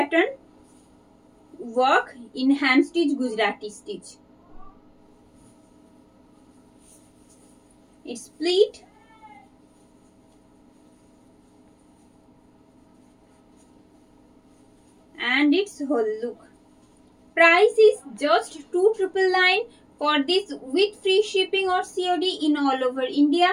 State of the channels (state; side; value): identical; both; correlation 1.00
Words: work in hand stitch Gujarati stitch. It's pleat and its whole look. Price is just 2,999 for this with free shipping or COD in all over India.